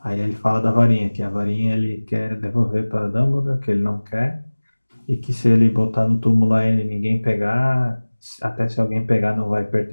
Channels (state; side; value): inverted; both; correlation -1.00